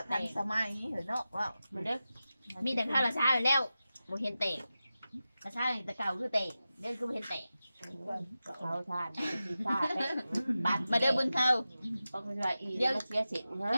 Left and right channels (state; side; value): inverted; both; correlation -0.94